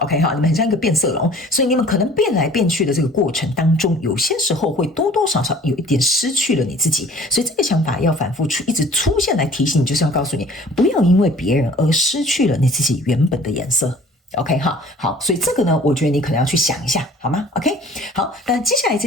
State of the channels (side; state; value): both; normal; correlation 0.50